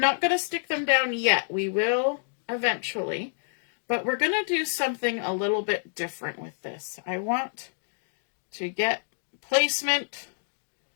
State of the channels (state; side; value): silent; right; digital silence